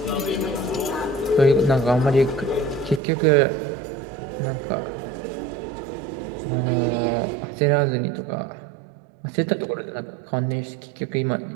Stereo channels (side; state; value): left; drops out; at 3.0 s